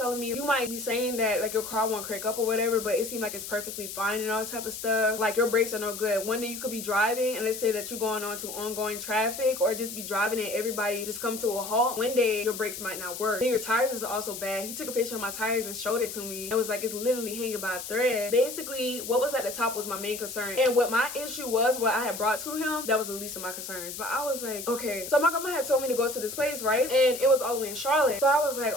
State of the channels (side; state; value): left; noise; hiss, 9 dB below the sound